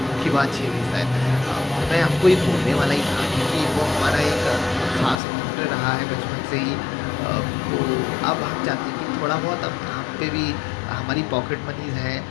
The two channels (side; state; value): right; drops out; at 5.2 s